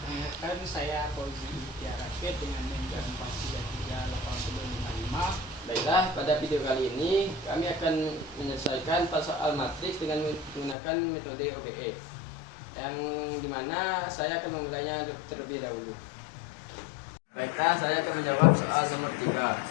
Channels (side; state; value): right; drops out; at 10.8 s